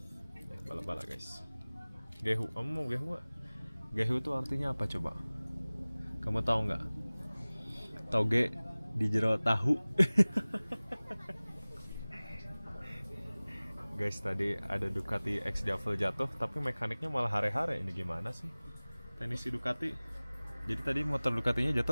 Bala-bala, guys. Gehu, kamu mau gehu nggak? Gehu itu artinya apa coba? Kamu tahu nggak? Toge di jero tahu. Guys, tadi ada Ducati X Diavel jatuh, tapi mekaniknya malah hare-hare. Ini gimana sih? Teknisi Ducati. Jadi tadi motor Ducatinya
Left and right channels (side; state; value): both; inverted; correlation -0.99